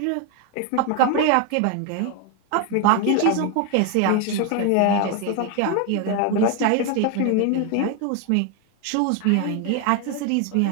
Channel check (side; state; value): both; different; correlation 0.01